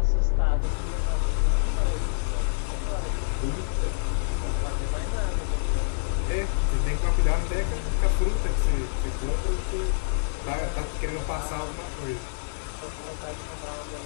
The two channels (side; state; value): right; silent; 60 dB below the other